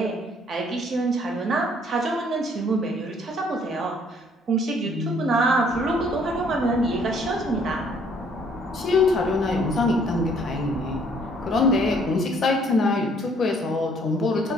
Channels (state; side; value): normal; both; correlation 0.62